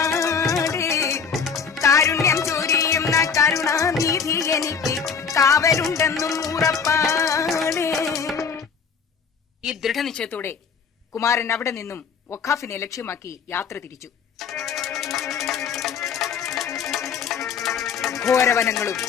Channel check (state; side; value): quieter; right; 6.2 dB